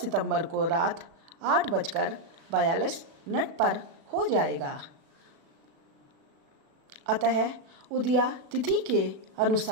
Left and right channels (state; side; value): late; left; 36 ms